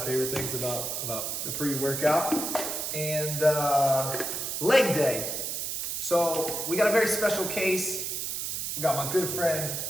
things about the pre-workout. And leg day. So we got a very special case. We got my good friend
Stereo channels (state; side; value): noise; right; hiss, 3 dB below the sound